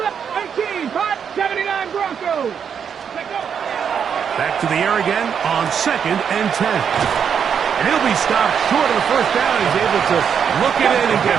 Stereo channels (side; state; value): left; quieter; 7.5 dB